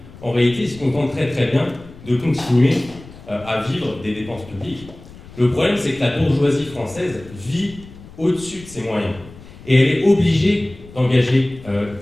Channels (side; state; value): left; noise; rumble, 19 dB below the sound